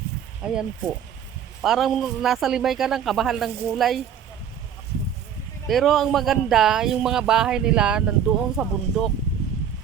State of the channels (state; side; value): quieter; left; 8.6 dB